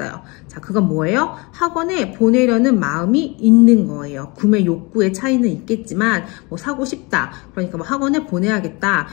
자, 그건 뭐예요? 학원에 보내려는 마음이 있는 거예요. 구매 욕구의 차이는 있겠지만 뭐 사고 싶다. 그러니까 뭐 학원에 보내야겠다.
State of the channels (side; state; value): right; quieter; 27.2 dB